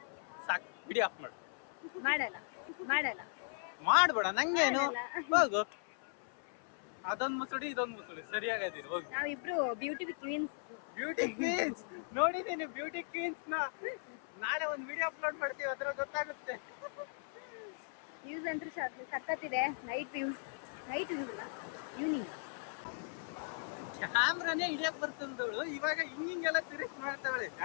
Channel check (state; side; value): silent; right; 52 dB below the other